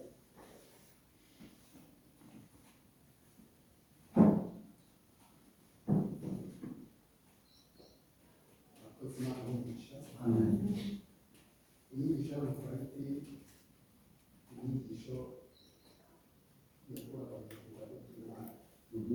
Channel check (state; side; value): identical; both; correlation 1.00